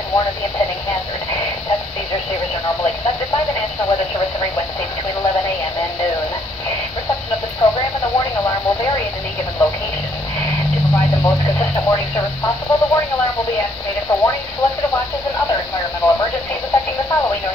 warn of the impending hazard. Tests of these receivers are normally conducted by the National Weather Service every Wednesday between 11 a.m. and noon. Reception of this program and the warning alarm will vary at any given location. To provide the most consistent warning service possible, the warning alarm will be activated for warnings, selected watches, and other environmental emergencies affecting the following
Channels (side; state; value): both; normal; correlation 0.67